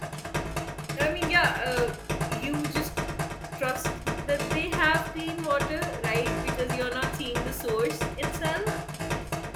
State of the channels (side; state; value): both; identical; correlation 1.00